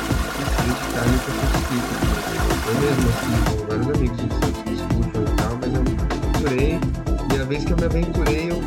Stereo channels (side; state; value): both; identical; correlation 1.00